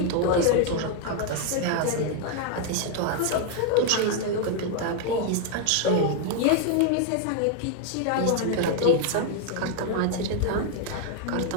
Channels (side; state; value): both; different; correlation 0.00